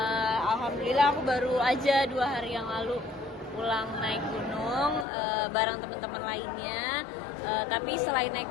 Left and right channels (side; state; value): right; drops out; at 5.1 s